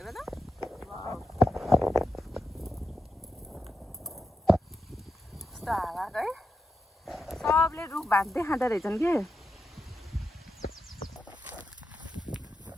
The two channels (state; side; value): normal; both; correlation 0.87